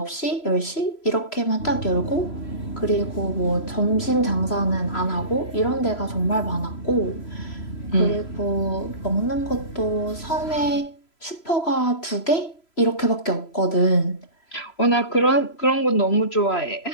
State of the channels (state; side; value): late; right; 3.0 ms